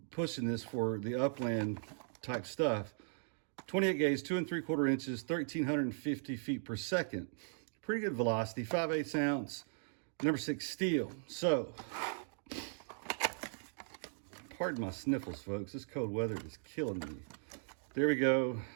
pushing this for the upland type stuff. 28 gauge, 2 3/4 inches, 1,350 feet per second. Pretty good velocity, 5/8 ounce, number 6 steel. So, pardon my sniffles, folks. This cold weather is killing me. There we go.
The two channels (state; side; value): silent; left; digital silence